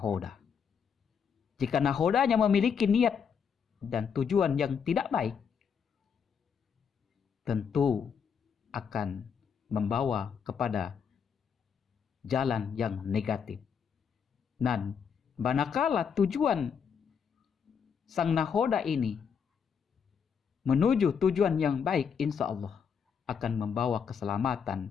Jika nahodanya memiliki niat dan tujuan yang tidak baik, tentu akan membawa kepada jalan yang negatif. Dan manakala tujuan sang nahoda ini menuju tujuan yang baik, insya Allah akan membawa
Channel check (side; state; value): right; quieter; 6.9 dB